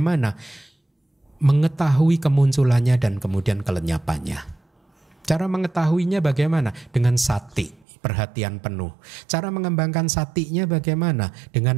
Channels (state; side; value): drops out; left; at 7.8 s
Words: Mengetahui kemunculannya dan kemudian kelenyapannya. Cara mengetahuinya bagaimana? Dengan sati, perhatian penuh. Cara mengembangkan satinya bagaimana?